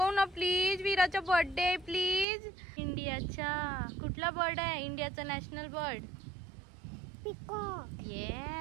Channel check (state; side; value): drops out; left; at 2.2 s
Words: ना प्लीज. वीराचा birthday please. इंडियाचा कुठला बर्ड आहे? इंडियाचा national bird peacock.